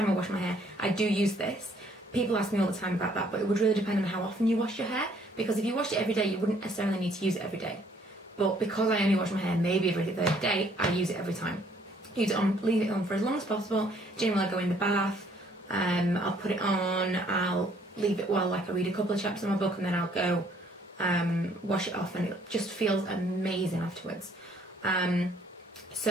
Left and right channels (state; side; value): normal; both; correlation 0.63